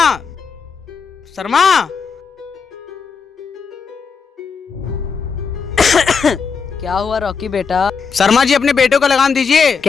शर्मा। क्या हुआ रॉकी बेटा? शर्मा जी अपने बेटे को लगाम दीजिए।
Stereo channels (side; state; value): right; quieter; 5.6 dB